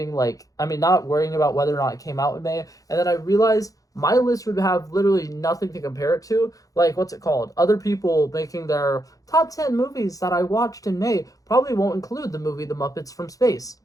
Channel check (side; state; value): right; late; 0.17 ms